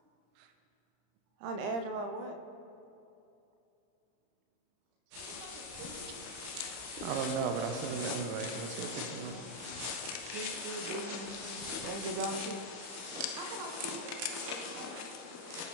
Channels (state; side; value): late; left; 35 ms